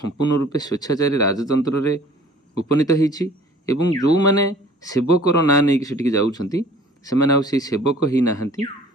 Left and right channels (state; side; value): normal; both; correlation 0.50